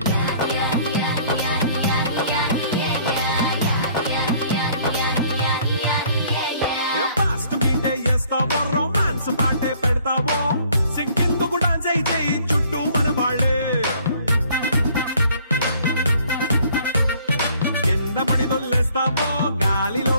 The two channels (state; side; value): inverted; both; correlation -0.58